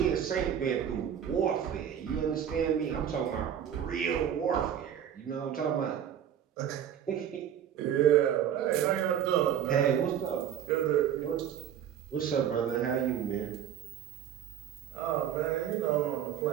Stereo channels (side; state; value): left; quieter; 9.5 dB